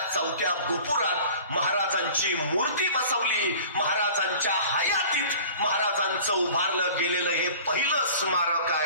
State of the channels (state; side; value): inverted; both; correlation -0.44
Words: 4थ्या गोपुरात महाराजांची मूर्ती बसवली. महाराजांच्या हयातीत महाराजांचं उभारलं गेलेलं हे पहिलं स्मारक